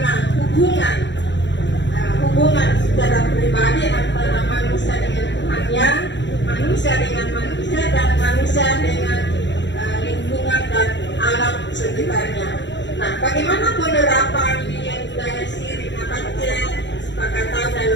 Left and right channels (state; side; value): late; right; 0.52 ms